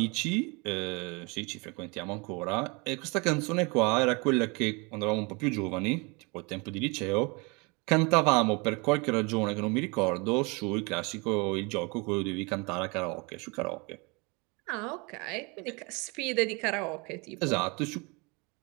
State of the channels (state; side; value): quieter; left; 29.0 dB